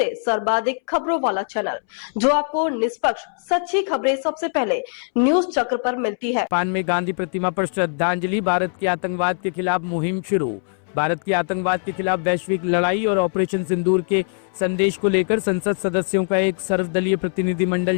सर्वाधिक खबरों वाला चैनल, जो आपको निष्पक्ष सच्ची खबरें सबसे पहले न्यूज चक्र पर मिलती है। जापान में गांधी प्रतिमा पर श्रद्धांजलि। भारत की आतंकवाद के खिलाफ मुहिम शुरू। भारत की आतंकवाद के खिलाफ वैश्विक लड़ाई और ऑपरेशन सिंदूर के संदेश को लेकर संसद सदस्यों का एक सर्वदलीय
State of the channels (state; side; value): silent; right; 64 dB below the other